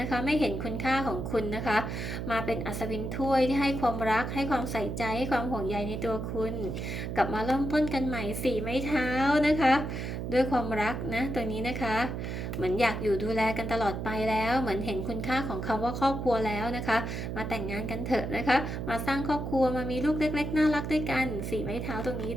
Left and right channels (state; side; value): noise; right; hum, 4 dB below the sound